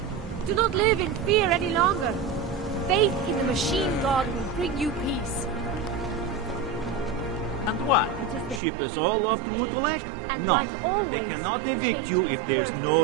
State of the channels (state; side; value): drops out; left; at 8.6 s